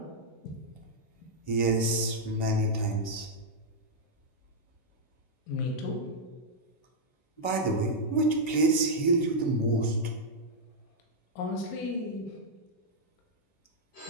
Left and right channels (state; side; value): late; right; 11 ms